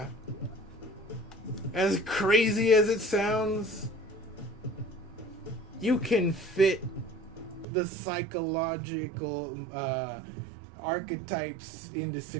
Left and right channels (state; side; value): drops out; left; at 7.7 s